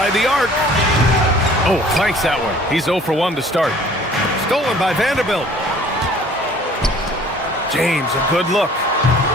the arc. Oh, flanks that one. He's 0 for 1 to start. Stolen by Vanderbilt. James, a good look.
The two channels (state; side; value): normal; both; correlation 0.52